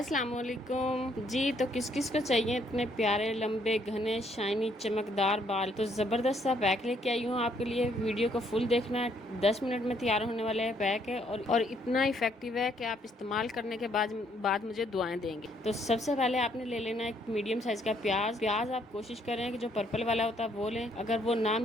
वालेकुम जी। तो किस किस को चाहिए इतने प्यारे लंबे घने शाइनी चमकदार बाल? तो ज़बरदस्त सा पैक लेके आई हूँ आपके लिए। वीडियो को फुल देखना है, 10 मिनट में तैयार होने वाला है पैक है और इतना इफेक्टिव है कि आप इस्तेमाल करने के बाद मुझे दुआएं देंगे। तो सबसे पहले आपने ले लेना है एक मीडियम साइज़ का प्याज आप कोशिश करें कि जो पर्पल वाला होता है वो लें, अगर वो ना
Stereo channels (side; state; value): both; normal; correlation 0.69